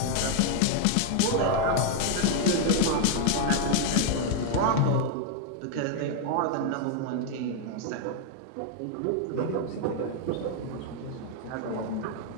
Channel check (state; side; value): different; both; correlation 0.00